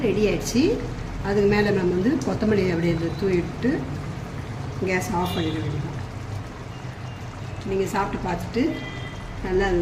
ரெடி ஆகிடுச்சு. அதுக்கு மேலே நம்ம வந்து கொத்தமல்லி அப்படியே தூவிட்டு கேஸ் ஆஃப் பண்ணிட வேண்டியதான். நீங்கள் சாப்பிட்டு பார்த்துட்டு நல்லா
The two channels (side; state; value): both; identical; correlation 1.00